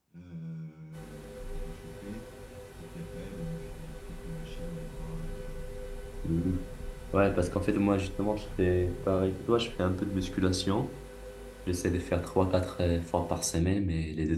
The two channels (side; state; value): both; identical; correlation 1.00